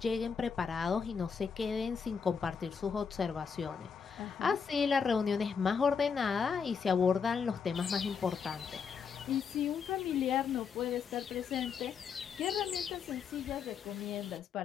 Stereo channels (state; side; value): quieter; right; 6.2 dB